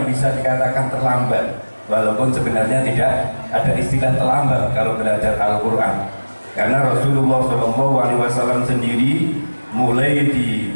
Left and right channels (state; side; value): inverted; both; correlation -1.00